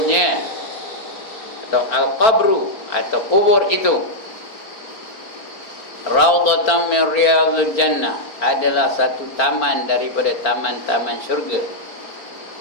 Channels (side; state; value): right; late; 4.4 ms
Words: atau al-qabru, atau kubur itu, raudhatan min riyadil jannah, adalah satu taman daripada taman-taman syurga.